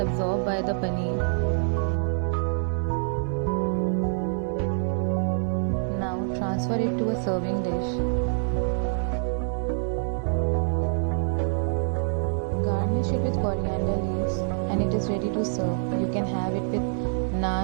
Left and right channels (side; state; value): left; silent; digital silence